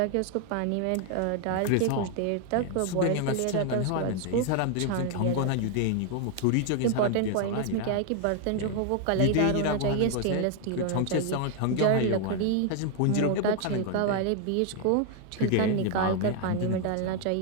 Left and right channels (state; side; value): different; both; correlation 0.00